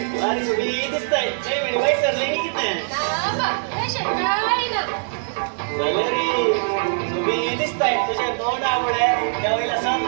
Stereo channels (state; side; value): silent; left; digital silence